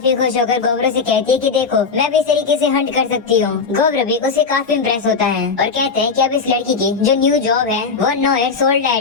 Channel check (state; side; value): quieter; right; 4.9 dB